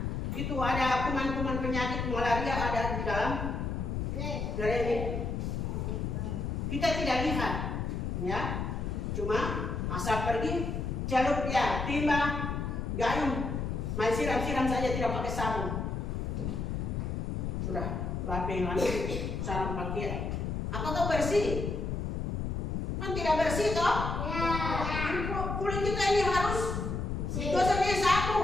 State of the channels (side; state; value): left; noise; rumble, 2 dB below the sound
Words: Itu ada kuman-kuman penyakit malaria ada di dalam drain itu. Kita tidak lihat, ya. Cuma asal pergi celup ya, timba, gayung, main siram-siram saja tidak pakai sabun. Sudah, lapeng lagi, sarung pakaian. Apakah bersih? Kan tidak bersih toh? Ya. Kulit kita ini harus gosoknya